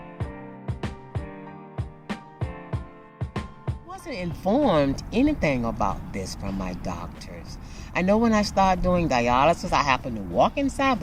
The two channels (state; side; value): identical; both; correlation 1.00